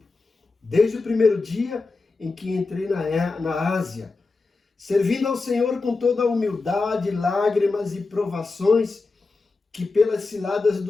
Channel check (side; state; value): right; quieter; 3.8 dB